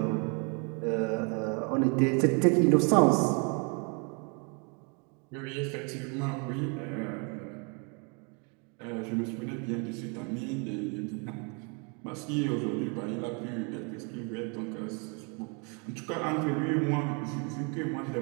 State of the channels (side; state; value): left; quieter; 34.8 dB